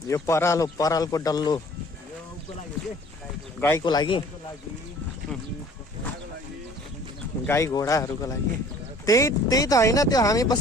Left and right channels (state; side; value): normal; both; correlation 0.52